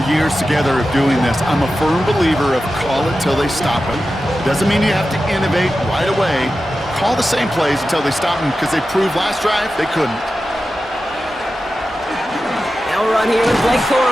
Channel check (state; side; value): normal; both; correlation 0.93